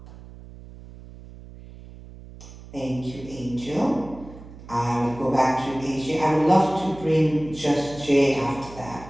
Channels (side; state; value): right; noise; hum, 17 dB below the sound